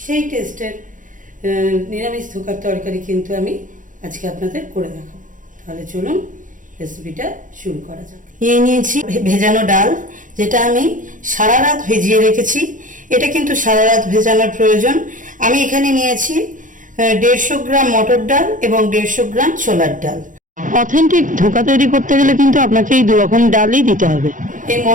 সেই টেস্টের নিরামিষ ধোঁকার তরকারি কিন্তু আমি আজকে আপনাদের করে দেখাবো। তাহলে চলুন রেসিপিটা শুরু করা যাক। নিয়েছি ভেজানো ডাল, যেটা আমি সারা রাত ভিজিয়ে রেখেছি। এটা কিন্তু সারা রাত ভেজানোর প্রয়োজন। আমি এখানে নিয়েছি 150 গ্রাম মটর ডাল এবং 150 গ্রাম ছোলার ডাল। অথেন্টিক ধোঁকা তৈরি করতে গেলে কিন্তু আপনাকে এই দু রকম ডালই দিতে হবে। এই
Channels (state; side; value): late; left; 0.38 ms